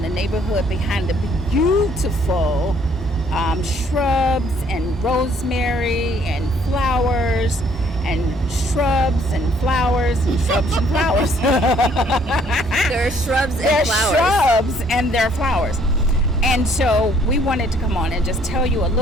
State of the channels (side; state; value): both; normal; correlation 0.63